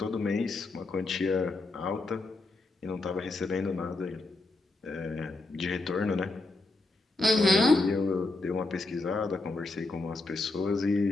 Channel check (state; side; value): quieter; right; 3.2 dB